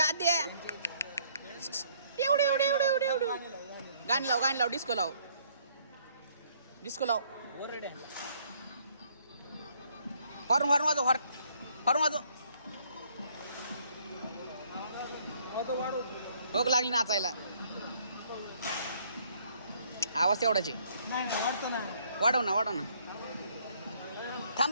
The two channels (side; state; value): both; inverted; correlation -0.64